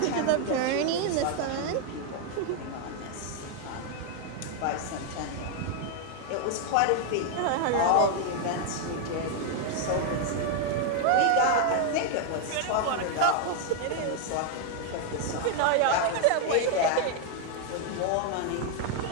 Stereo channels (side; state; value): both; different; correlation 0.00